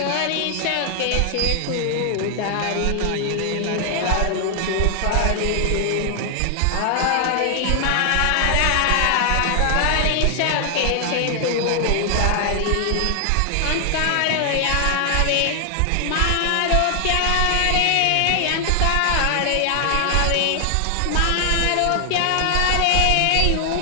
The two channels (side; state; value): both; different; correlation 0.00